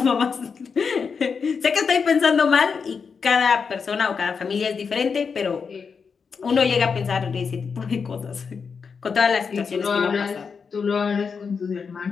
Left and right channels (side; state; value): right; quieter; 5.7 dB